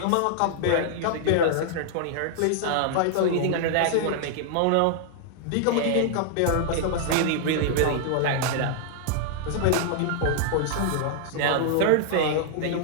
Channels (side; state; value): both; different; correlation -0.01